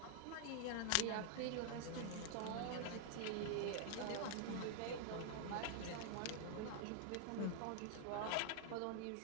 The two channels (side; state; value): both; different; correlation 0.00